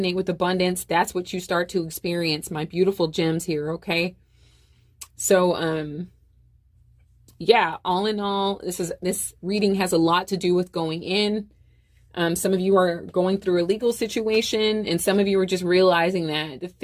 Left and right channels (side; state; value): both; identical; correlation 1.00